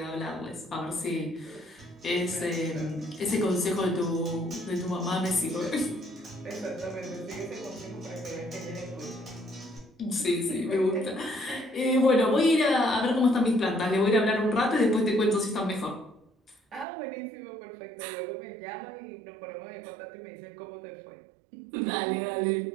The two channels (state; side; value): drops out; left; at 16.9 s